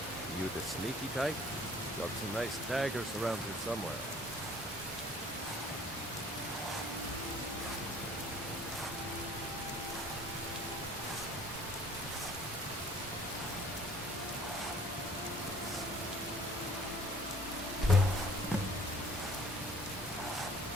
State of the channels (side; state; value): both; normal; correlation 0.53